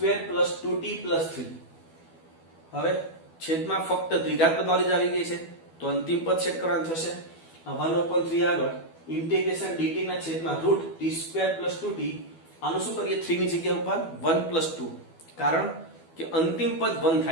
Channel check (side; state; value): right; late; 12 ms